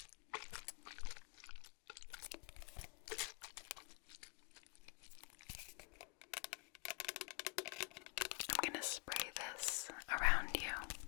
I'm going to spray this around you.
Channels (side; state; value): right; quieter; 30.9 dB